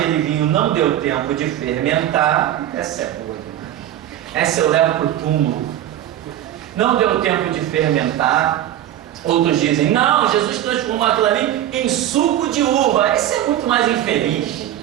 vinho não deu tempo de fermentar. Essa é boa. Essa eu levo para o túmulo. Não deu tempo de fermentar. Outros dizem: não, Jesus transformou aquilo ali em suco de uva. Esse é muito mais infeliz.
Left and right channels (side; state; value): left; quieter; 12.1 dB